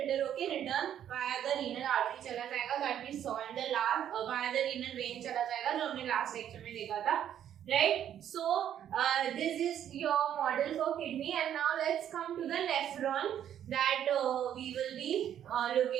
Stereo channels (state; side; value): quieter; left; 10.2 dB